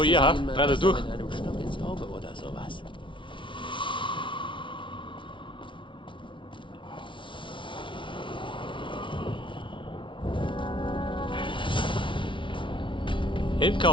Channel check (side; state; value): right; late; 0.24 ms